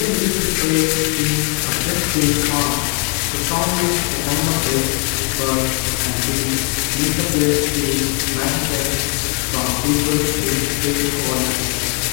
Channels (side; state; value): right; quieter; 34.1 dB